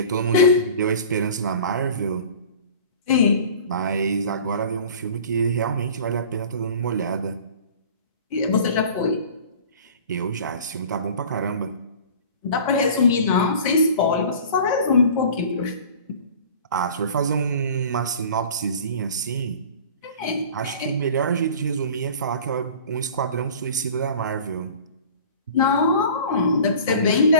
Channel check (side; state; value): both; inverted; correlation -0.42